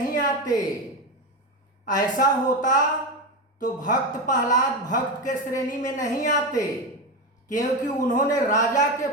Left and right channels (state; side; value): normal; both; correlation 0.16